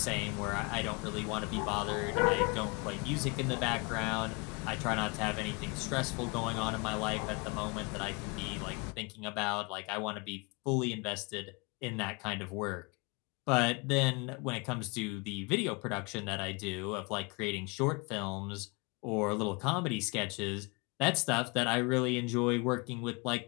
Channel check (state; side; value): quieter; right; 29.1 dB